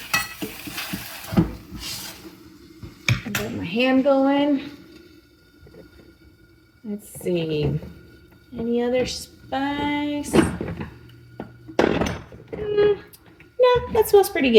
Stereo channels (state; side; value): identical; both; correlation 1.00